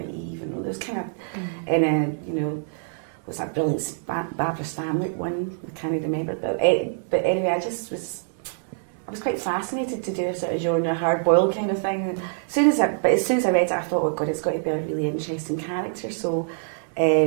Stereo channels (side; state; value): left; silent; 59 dB below the other